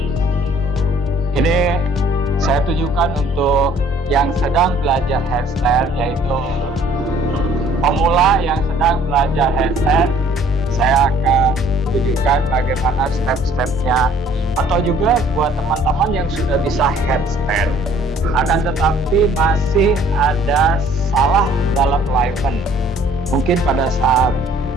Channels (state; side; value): normal; both; correlation 0.56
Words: Ini saya tunjukkan untuk yang sedang belajar headstand, yaitu pemula yang sedang belajar headstand. Saya akan tunjukkan bagaimana step-stepnya, atau juga buat teman-teman yang sudah bisa headstand akan tetapi masih ada salah dalam alignment. Mungkin pada saat